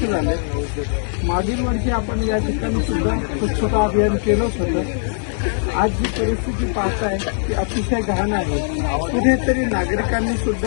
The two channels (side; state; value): right; silent; digital silence